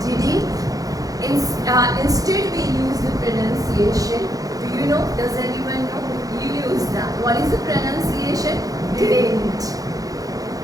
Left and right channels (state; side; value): late; left; 0.17 ms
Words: didn't. Instead, we use the pronunciation. Do you know? Does anyone know? You use that. What is the pronunciation? Didn't.